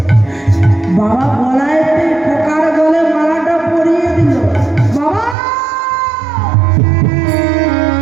বাবা গলায় পোকার গলে মালাটা পরিয়ে দিল। বাবা,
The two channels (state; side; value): drops out; left; at 5.4 s